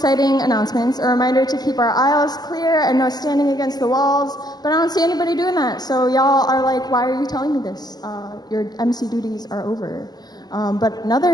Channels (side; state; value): right; late; 0.20 ms